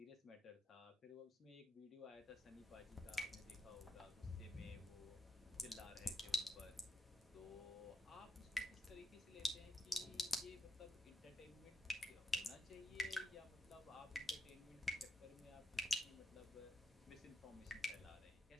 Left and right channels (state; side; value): normal; both; correlation 0.84